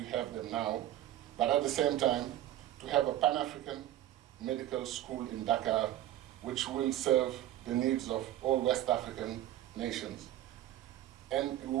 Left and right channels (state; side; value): quieter; left; 13.2 dB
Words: have them now, but at the same time to have a Pan-African medical school in Dakar, which will serve the needs of all West African nations. And we